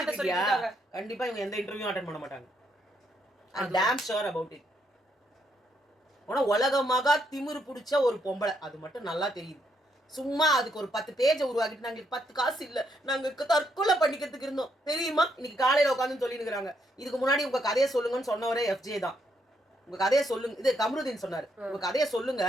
சொல்லிட்டாங்க. கண்டிப்பா இவங்க எந்த இன்டர்வியூ அட்டெண்ட் பண்ண மாட்டாங்க. I'm damn sure about it. ஆனா உலகமாக திமிரு பிடிச்ச ஒரு பொம்பளை, அது மட்டும் நல்லா தெரியுது. சும்மா அதுக்கு ஒரு 10 பேஜை உருவாக்கிட்டு நாங்க 10 காசு இல்ல நாங்க தற்கொலை பண்ணிக்கிறதுக்கு இருந்தோம் தெரியுமா, இன்னைக்கு காலையில உட்காந்து சொல்லிருக்காங்க. இதுக்கு முன்னாடி உங்க கதையை சொல்லுங்கன்னு சொன்னவரே FJ தான். உங்க கதையை சொல்லுங்க, இது கமருதீன் சொன்னாரு, உங்க கதையை சொல்லுங்க,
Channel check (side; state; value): both; normal; correlation 0.76